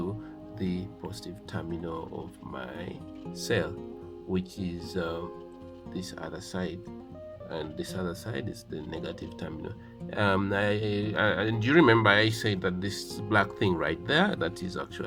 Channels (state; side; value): identical; both; correlation 1.00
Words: the positive terminal of my cell, which is this other side, and this other side is the negative terminal. And you remember I said that this black thing right there, that is